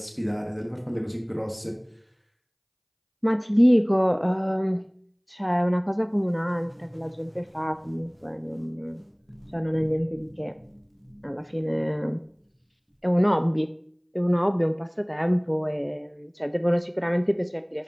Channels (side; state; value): both; identical; correlation 1.00